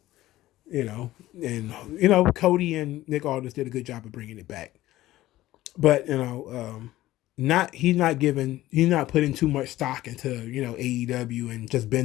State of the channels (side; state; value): right; quieter; 15.8 dB